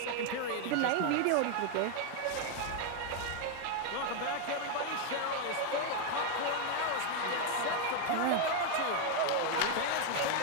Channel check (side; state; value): both; different; correlation 0.01